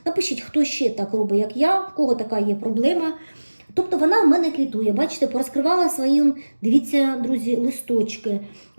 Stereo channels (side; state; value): both; inverted; correlation -1.00